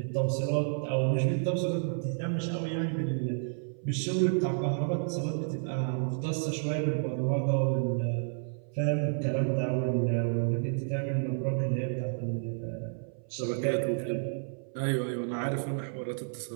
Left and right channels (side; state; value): left; silent; 57 dB below the other